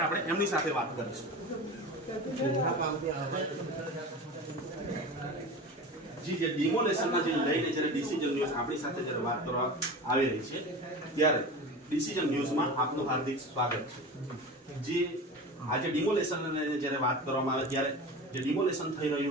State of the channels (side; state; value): both; normal; correlation 0.31